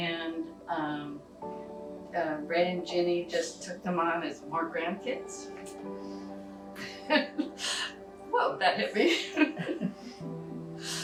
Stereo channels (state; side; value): identical; both; correlation 1.00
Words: Ray and Ginny just took them on as more grandkids. Whoa, that hit me.